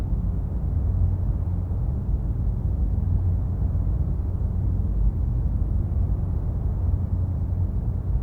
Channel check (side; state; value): both; identical; correlation 1.00